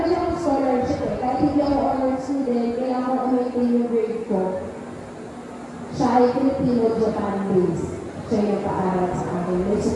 siyang scholarship eh. Kahit hindi ako honor student, kaya ako umitin yung grade ko. Siya ay Filipino-Japan based. Siya yung paaral sa akin. May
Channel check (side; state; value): both; identical; correlation 1.00